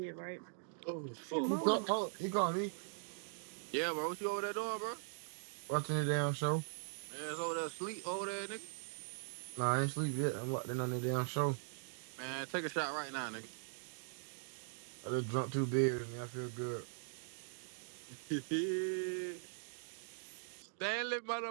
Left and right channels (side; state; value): left; silent; digital silence